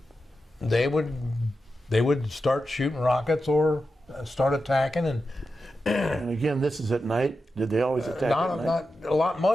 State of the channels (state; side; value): normal; both; correlation 0.90